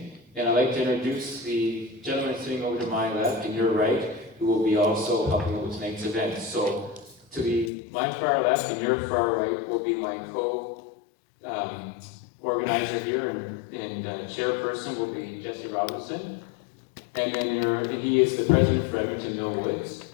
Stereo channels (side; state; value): right; drops out; at 7.7 s